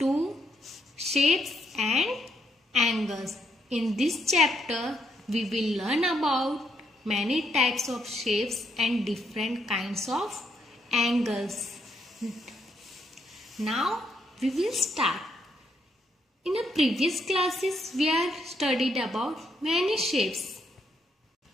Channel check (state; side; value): normal; both; correlation 0.76